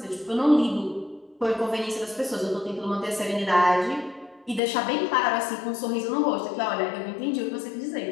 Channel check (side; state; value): right; drops out; at 4.6 s